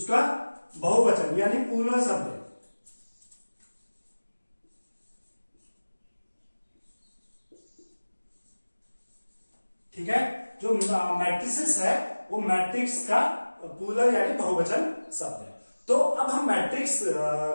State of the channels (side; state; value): both; inverted; correlation -1.00